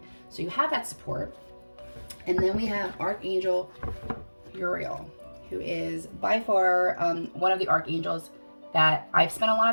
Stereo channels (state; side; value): inverted; both; correlation -1.00